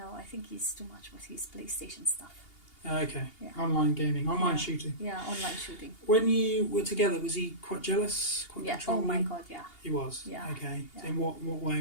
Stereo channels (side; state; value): right; late; 2.8 ms